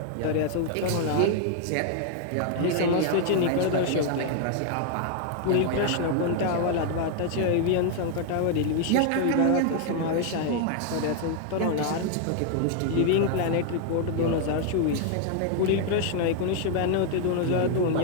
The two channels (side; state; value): both; different; correlation 0.00